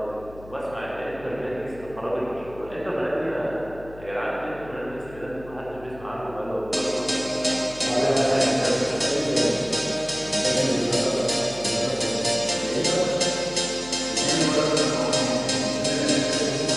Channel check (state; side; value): noise; left; hum, 18 dB below the sound